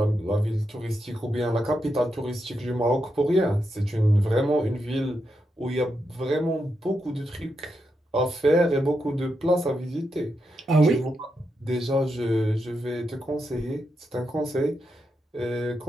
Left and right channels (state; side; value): normal; both; correlation 0.85